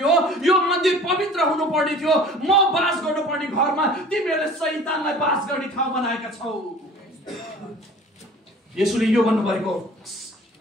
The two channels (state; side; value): normal; both; correlation 0.46